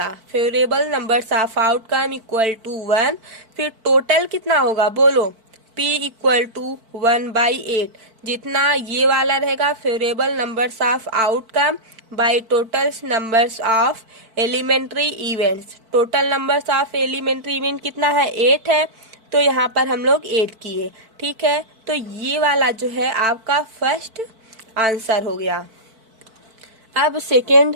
Favourable numbers of outcome equal to 1, फिर टोटल कितना होगा बोलो, P इक्वल टू 1/8, जितना ये वाला रहेगा favourable numbers of outcome by total numbers of elementary events. Total numbers of elementary event कितना है, 8 है, तो यहाँ पर हम लोग 8 किए। ठीक है, तो ये वाला जो है आपका फर्स्ट आंसर हो गया। अब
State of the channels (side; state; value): left; late; 4.5 ms